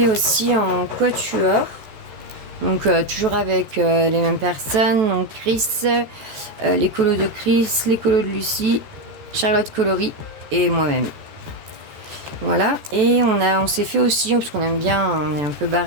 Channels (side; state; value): left; late; 14 ms